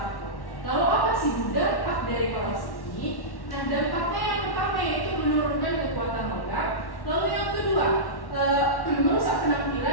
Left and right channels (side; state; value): right; late; 1.1 ms